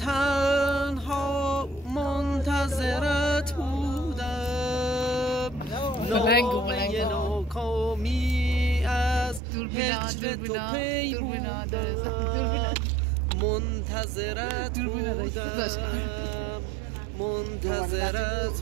منتظرت بودم نامه ناکامی از هجر تو پی بودم منتظرت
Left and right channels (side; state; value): left; drops out; at 9.4 s